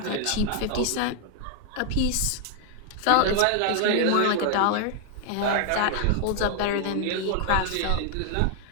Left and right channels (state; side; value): different; both; correlation 0.00